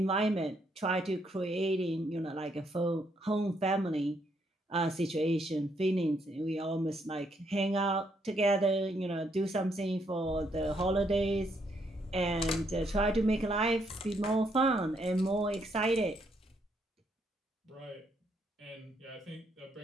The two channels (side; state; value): both; normal; correlation 0.74